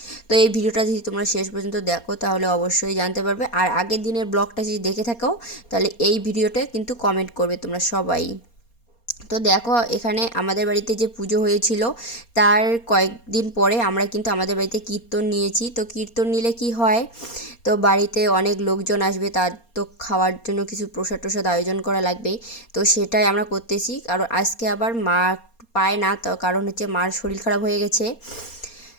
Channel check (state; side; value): late; right; 4.3 ms